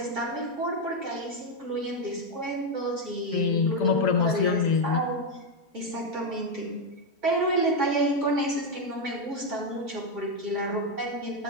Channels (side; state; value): both; normal; correlation 0.04